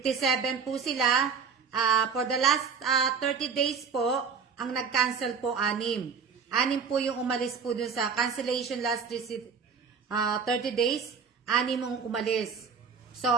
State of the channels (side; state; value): left; quieter; 6.0 dB